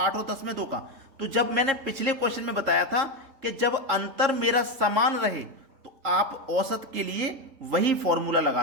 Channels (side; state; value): left; late; 3.6 ms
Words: और 10 में 2 का। तो जब मैंने पिछले क्वेश्चन में बताया था कि जब अंतर मेरा समान रहे तो आप औसत के लिए वही फॉर्मूला